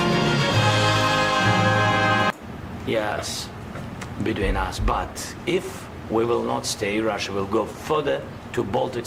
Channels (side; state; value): both; identical; correlation 1.00